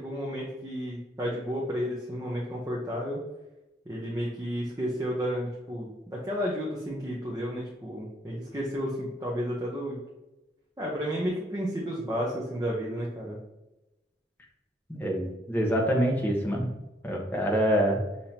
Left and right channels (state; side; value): normal; both; correlation 0.67